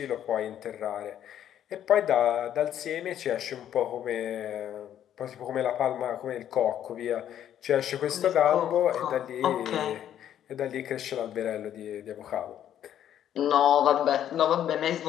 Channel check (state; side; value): quieter; right; 10.6 dB